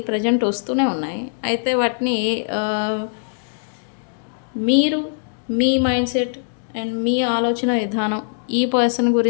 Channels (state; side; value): silent; right; digital silence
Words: ప్రజెంట్ వస్తూనే ఉన్నాయి. అయితే వాటిని మీరు మీ మైండ్ సెట్ అండ్ మీ ఆలోచన విధానం ఈ పర్సన్